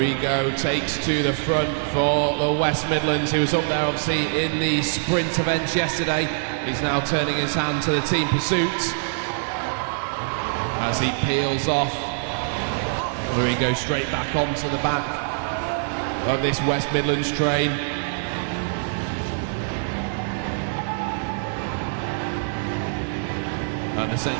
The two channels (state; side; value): silent; left; digital silence